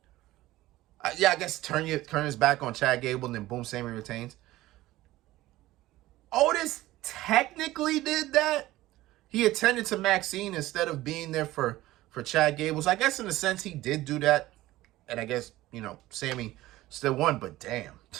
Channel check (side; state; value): left; quieter; 16.7 dB